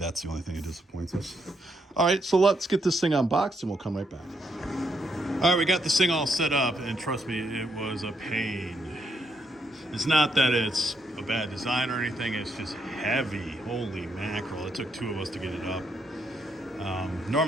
the only thing that disappoints us. All right, so let's get this thing unboxed and we'll come right back. All right, we got this thing all set up, and trust me, it was a pain. It's not that it's a bad design or anything. It's just heavy. Holy mackerel. It took two of us to get it up.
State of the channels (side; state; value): both; normal; correlation 0.77